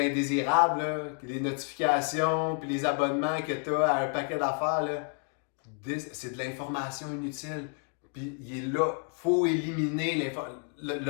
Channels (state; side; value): quieter; right; 39.9 dB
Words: là, les notifications, puis les abonnements que tu as à un paquet d'affaires, là, c'est de l'information inutile. Puis il est là, il faut éliminer l'information.